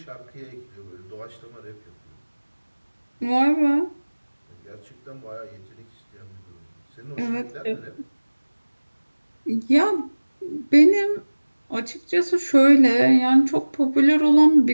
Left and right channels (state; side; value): inverted; both; correlation -1.00